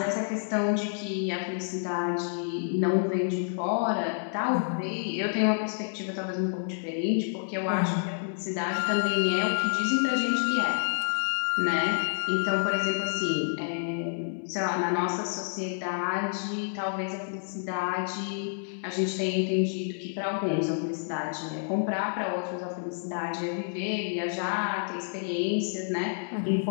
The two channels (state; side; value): silent; right; digital silence